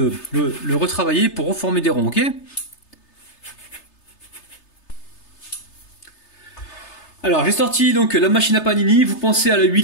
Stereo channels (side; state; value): right; late; 3.3 ms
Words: retravailler pour reformer des ronds, ok? Alors j'ai sorti donc la machine à panini, vous pensez à la